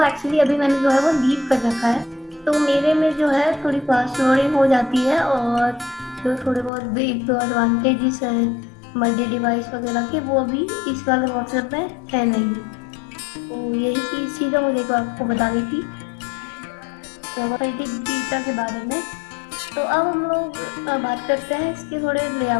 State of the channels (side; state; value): right; drops out; at 6.7 s